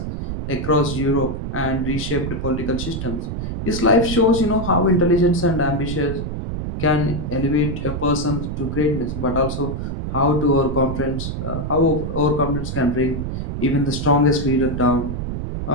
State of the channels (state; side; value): noise; right; rumble, 4 dB below the sound